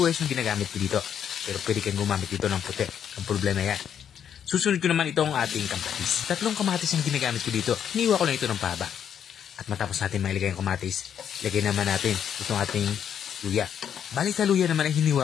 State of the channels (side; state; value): right; quieter; 8.7 dB